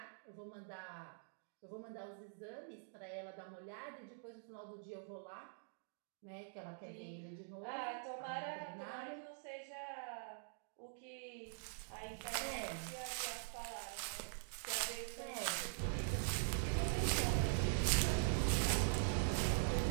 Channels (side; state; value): left; silent; digital silence